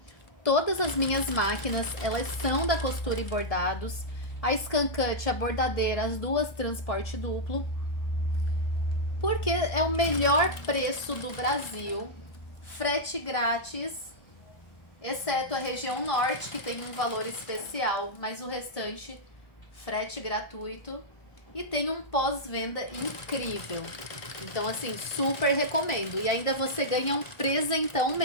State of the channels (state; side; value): late; right; 1.4 ms